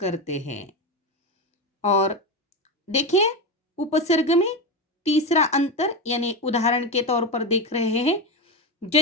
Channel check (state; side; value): normal; both; correlation 0.16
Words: हैं। और देखिए उपसर्ग में तीसरा अंतर, यानी उदाहरण के तौर पर देख रहे हैं,